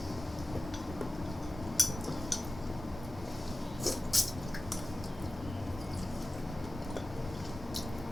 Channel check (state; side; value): normal; both; correlation 0.95